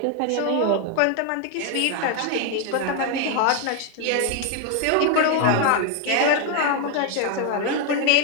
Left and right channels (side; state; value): both; different; correlation 0.01